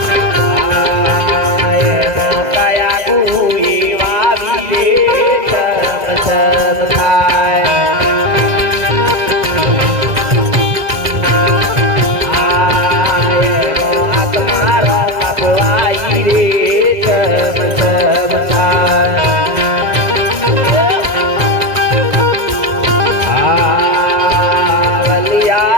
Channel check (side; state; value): left; late; 2.0 ms